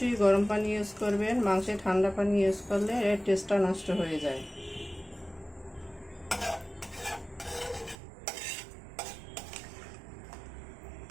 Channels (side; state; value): left; drops out; at 8.0 s